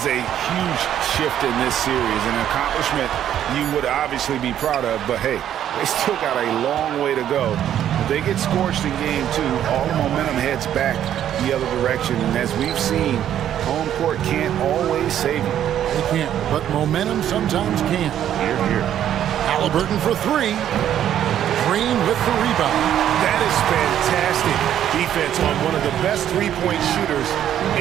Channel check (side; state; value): left; quieter; 10.6 dB